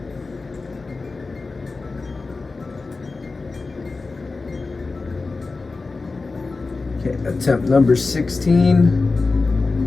Okay, attempt number 16.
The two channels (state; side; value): quieter; right; 3.8 dB